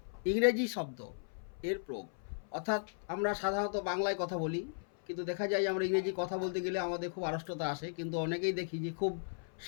ইংরেজি শব্দ এর প্রয়োগ। অর্থাৎ আমরা সাধারণত বাংলায় কথা বলি, কিন্তু দেখা যায় আমরা ইংরেজি কথা বলতে গেলে আমাদের খুব আড়ষ্টতা আসে। কিন্তু অনেকেই দেখি যে খুব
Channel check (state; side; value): silent; right; 54 dB below the other